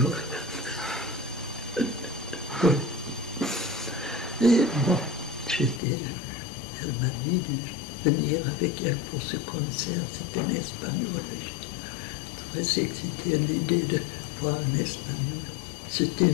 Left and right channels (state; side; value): drops out; right; at 5.8 s